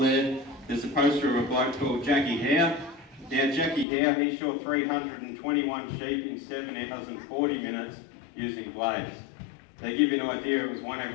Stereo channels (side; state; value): right; drops out; at 3.9 s